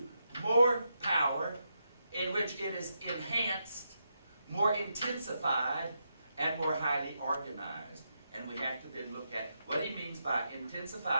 more power, in which it is enhanced, more intensified, and more highly organized. And we have to then look at what he means by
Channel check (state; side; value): inverted; both; correlation -0.83